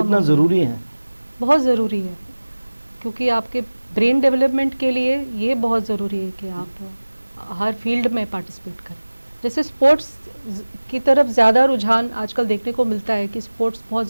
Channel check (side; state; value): both; inverted; correlation -1.00